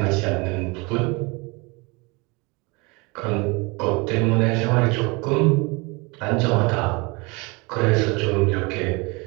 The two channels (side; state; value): left; quieter; 27.3 dB